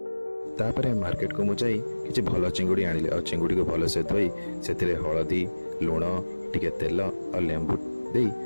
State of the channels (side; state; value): both; inverted; correlation -1.00